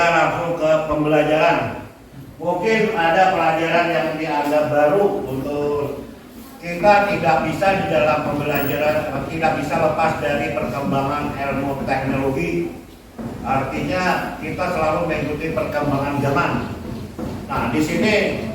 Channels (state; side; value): identical; both; correlation 1.00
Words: langsung ke pembelajaran. Mungkin ada pelajaran yang dianggap baru untuk kita tidak bisa di dalam pembelajaran, tidak bisa lepas dari perkembangan ilmu teknologi. Artinya kita selalu mengikuti perkembangan zaman. Nah, di sini